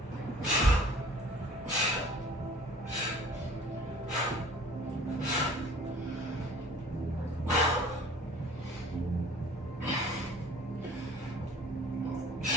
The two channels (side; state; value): both; normal; correlation 0.49